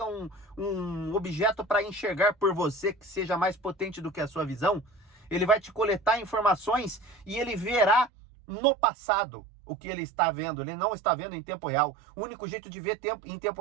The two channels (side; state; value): left; drops out; at 8.1 s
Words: um objeto para enxergar por você que seja mais potente do que a sua visão, ele vai te coletar informações e ele verá no passado o que ele está vendo. Ele não está vendo em tempo real. O único jeito de ver em tempo